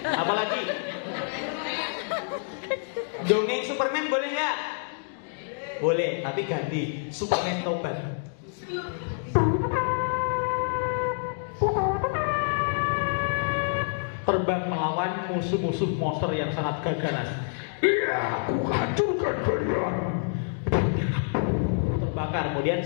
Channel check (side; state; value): right; silent; digital silence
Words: apalagi dongeng Superman boleh nggak? Boleh, tapi ganti Superman tobat. Terbang melawan musuh-musuh monster yang sangat gagaras. Iya, aku hancurkan kalian. Terbakar, kemudian